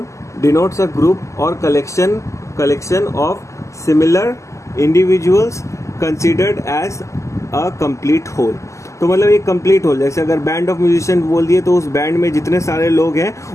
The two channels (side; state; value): right; late; 0.15 ms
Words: denotes a group और collection of similar individuals considered as a complete whole. तो मतलब एक कंप्लीट होल, जैसे अगर बैंड ऑफ म्यूजिशियन बोल दिए तो उस बैंड में जितने सारे लोग हैं